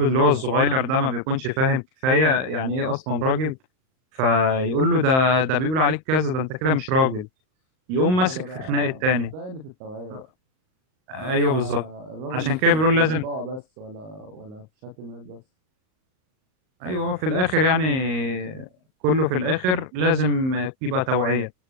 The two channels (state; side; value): late; left; 38 ms